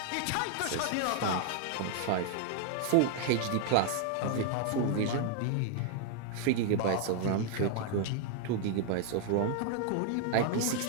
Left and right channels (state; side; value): different; both; correlation 0.00